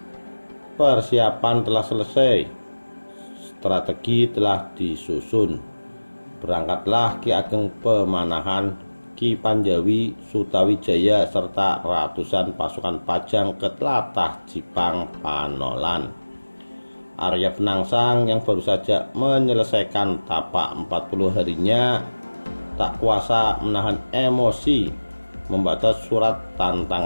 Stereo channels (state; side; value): inverted; both; correlation -1.00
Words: Persiapan telah selesai, strategi telah disusun. Berangkatlah Ki Ageng Pemanahan, Ki Panjawi, Sutawijaya serta ratusan pasukan Pajang ke tlatah Jipang Panolan. Arya Penangsang yang baru saja menyelesaikan tapak 40 harinya tak kuasa menahan emosi membaca surat